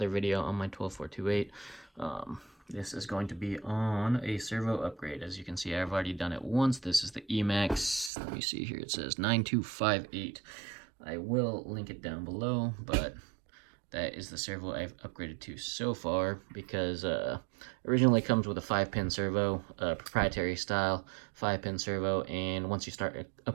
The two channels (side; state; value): left; drops out; at 8.1 s